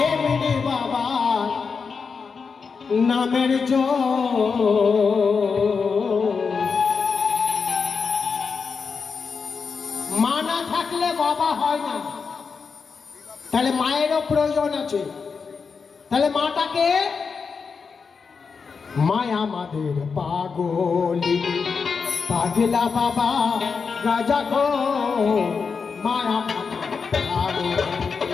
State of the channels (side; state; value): right; quieter; 5.4 dB